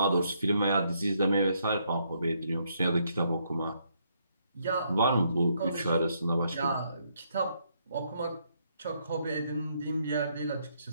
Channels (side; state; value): both; inverted; correlation -0.73